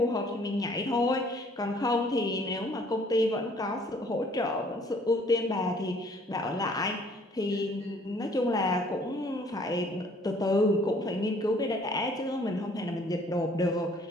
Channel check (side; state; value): both; normal; correlation 0.59